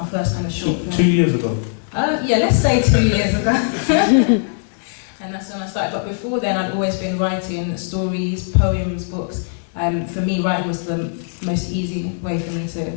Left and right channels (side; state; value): right; silent; digital silence